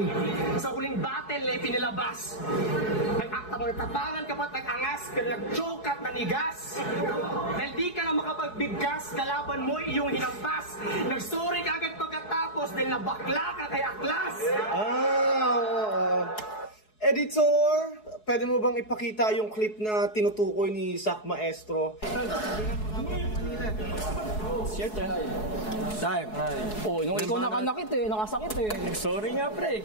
sa huling battle na ipinilabas. Nag-akta mo tapangan ka ba't nag-angas pero nag-choke at nanigas. Dahil di ka na makapagbigkas, kalaban mo iyong hinampas. Nag-sorry ka agad pagkatapos dahil nabakla ka kay Aklas. Editor, pwede mo bang ipakita yung clip na tinutukoy ni Sak Maestro? Siyempre. Time. Oh, nung ikaw nakanakit eh, nakasakit eh. Sorry nga pre,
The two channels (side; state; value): right; late; 4.7 ms